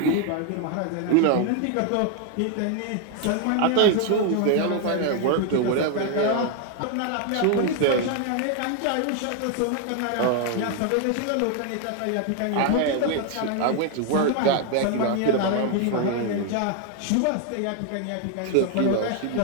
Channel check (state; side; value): different; both; correlation 0.01